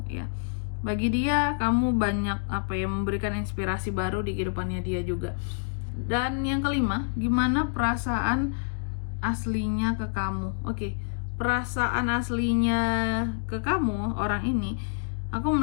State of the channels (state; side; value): silent; right; digital silence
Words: ya. Bagi dia, kamu banyak apa ya, memberikan inspirasi baru di kehidupannya dia juga. Dan yang kelima, gimana perasaan aslinya ke kamu? Oke, perasaan aslinya ke kamu, orang ini, aku